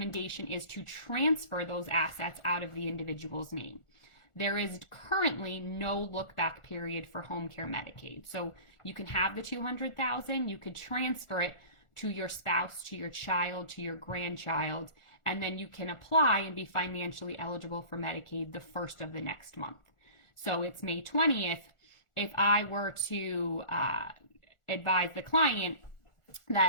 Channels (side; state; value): right; late; 1.4 ms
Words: is to transfer those assets out of the individual's name. There is currently no look-back period for home care Medicaid. So you can have the $200,000, you could transfer it to your spouse, to your child, to your grandchild, and then you can apply and be financially eligible for Medicaid the first of the next month. So it's May 20th. If I were to advise the client